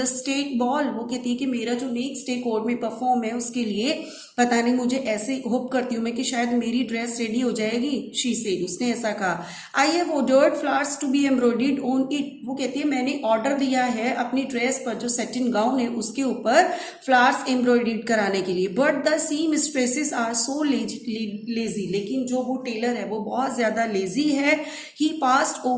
state ball. वो कहती है कि मेरा जो नेक्स्ट डे कोर्ट में परफॉर्म है उसके लिए पता नहीं, मुझे ऐसे होप करती हूँ मैं कि शायद मेरी ड्रेस रेडी हो जाएगी. शी सेड, उसने ऐसा कहा. I have ordered flowers to be embroidered on it. वो कहती है मैंने ऑर्डर दिया है अपनी ड्रेस पर, जो सेटिन गाउन है उसके ऊपर फ्लावर्स एम्ब्रॉयडर्ड कराने के लिए. But the seamstresses are so lazy. लेकिन जो वो टेलर है वो बहुत ज्यादा लेजी है. ही पास्ड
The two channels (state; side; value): identical; both; correlation 1.00